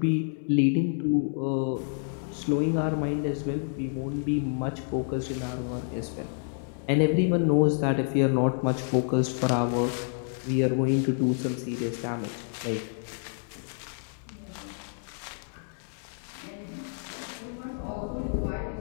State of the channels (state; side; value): silent; right; 59 dB below the other